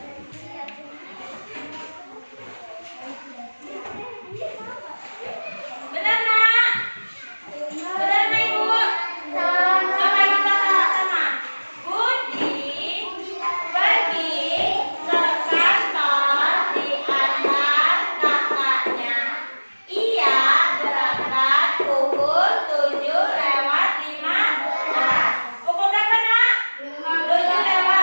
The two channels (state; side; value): inverted; both; correlation -1.00